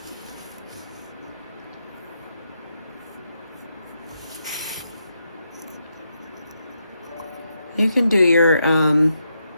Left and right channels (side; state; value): both; inverted; correlation -0.82